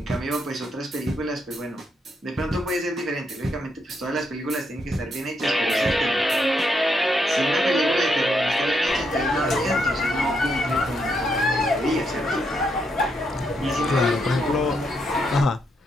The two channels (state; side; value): normal; both; correlation 0.79